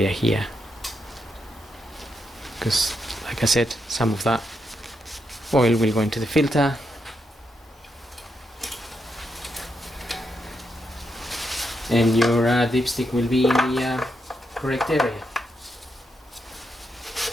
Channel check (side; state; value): both; normal; correlation 0.82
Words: here, because like I said, some of that oil will go into the filter. And your dipstick will be in the correct area.